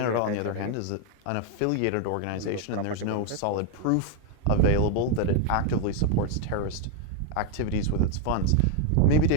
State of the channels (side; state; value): both; different; correlation 0.01